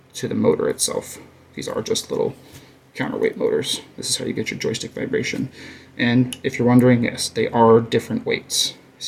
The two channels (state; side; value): identical; both; correlation 1.00